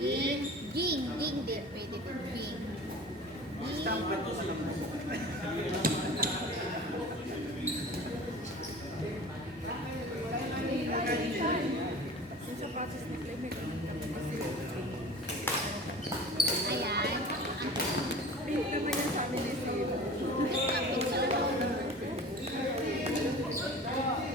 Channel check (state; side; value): normal; both; correlation 0.39